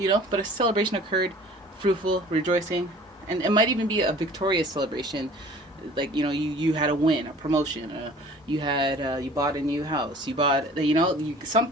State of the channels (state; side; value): normal; both; correlation 0.48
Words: but a celebration occurred, fruitful, rejoicing, and it might even be a victorious celebration. Like, you had a win, a promotion, you bought a new house, you bought,